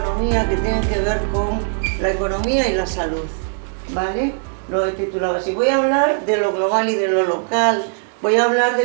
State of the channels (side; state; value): left; silent; 57 dB below the other